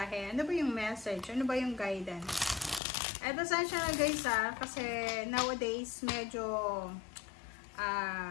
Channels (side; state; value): right; drops out; at 2.8 s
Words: Ano ba yung message? Ano ba yung guidance? Eto saan siya na guys kasi nowadays medyo